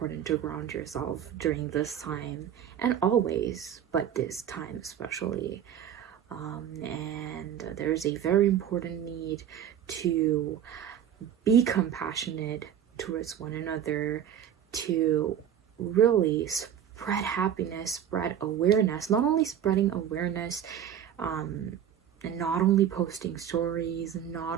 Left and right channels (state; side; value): quieter; left; 9.6 dB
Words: to ground yourself during this time, and always, but this time especially. And there's a very important need to be compassionate towards one another, to really spread happiness, spread awareness, not only spreading awareness, and not only posting stories, not